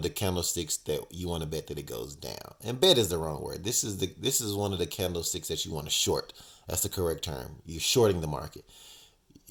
the candlesticks that you want to bet that it goes down. And bet is the wrong word. This is one of the candlesticks that you want to short. That's the correct term. You're shorting the market.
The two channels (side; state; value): both; identical; correlation 1.00